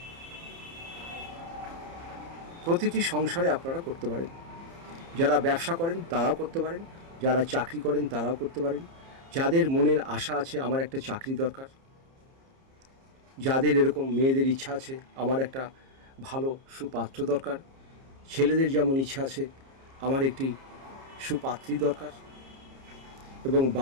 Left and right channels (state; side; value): late; left; 30 ms